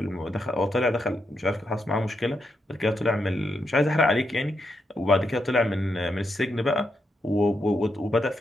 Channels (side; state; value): both; normal; correlation 0.82